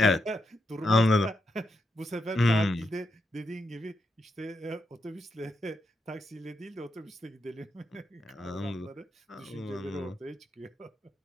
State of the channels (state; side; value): normal; both; correlation 0.83